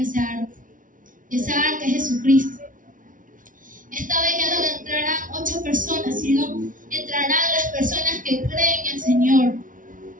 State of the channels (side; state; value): left; late; 0.38 ms